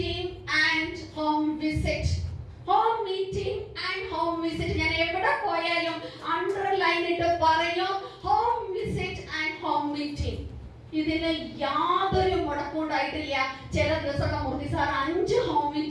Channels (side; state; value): both; identical; correlation 1.00